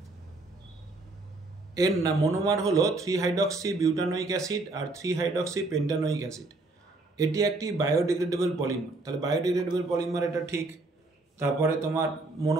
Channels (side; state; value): left; quieter; 3.2 dB